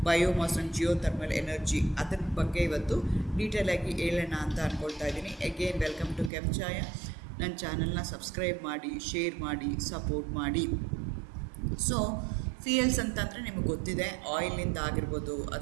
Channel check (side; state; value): left; drops out; at 6.3 s